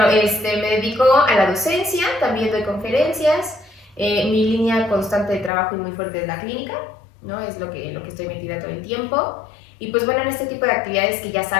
me dedico a la docencia, también doy conferencias. Mi línea constante de trabajo y muy fuerte es la clínica, ¿no? Es lo que estoy metida todo el tiempo. Y pues bueno, en este tipo de actividades que ya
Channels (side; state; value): right; drops out; at 5.5 s